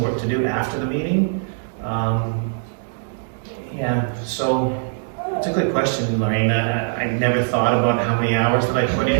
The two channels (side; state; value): left; silent; digital silence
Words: work to do after the meeting. So it's a good question, Lorraine. I never thought about how many hours that I put